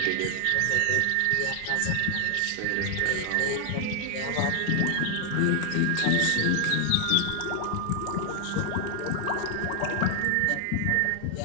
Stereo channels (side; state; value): both; different; correlation 0.00